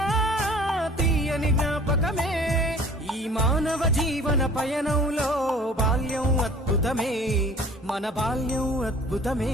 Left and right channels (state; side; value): normal; both; correlation 0.49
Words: తీయని జ్ఞాపకమే ఈ మానవ జీవన పయనంలో బాల్యం అద్భుతమే మన బాల్యం అద్భుతమే